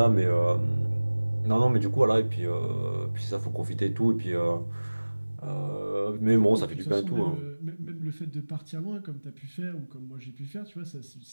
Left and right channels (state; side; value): inverted; both; correlation -1.00